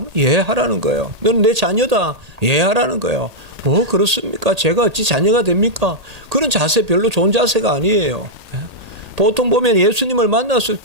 예하라는 거예요. 너는 내 자녀다. 예하라는 거예요. 뭐 그렇습니까? 제가 어찌 자녀가 됩니까? 그런 자세 별로 좋은 자세가 아니에요. 보통 보면 예수님을 만났을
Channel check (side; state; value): left; late; 1.8 ms